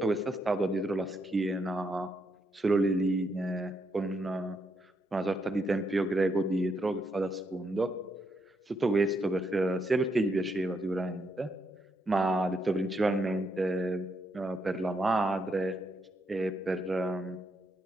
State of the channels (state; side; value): normal; both; correlation 0.78